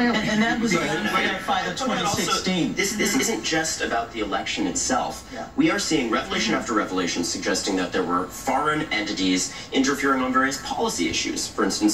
And that was verified in 2016. This isn't just about the election itself. We are seeing revelation after revelation suggesting that there were foreign entities interfering on various policy issues. For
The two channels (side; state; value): both; identical; correlation 1.00